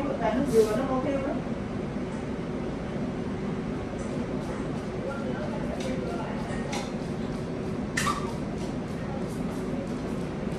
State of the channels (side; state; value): both; identical; correlation 1.00